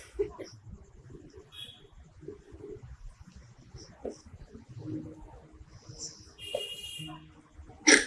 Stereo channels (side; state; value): both; identical; correlation 1.00